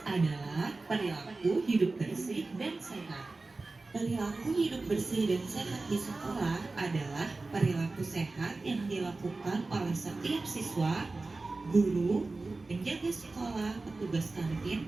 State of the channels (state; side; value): quieter; left; 3.5 dB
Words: adalah perilaku hidup bersih dan sehat. Perilaku hidup bersih dan sehat di sekolah adalah perilaku sehat yang dilakukan oleh setiap siswa, guru, penjaga sekolah, petugas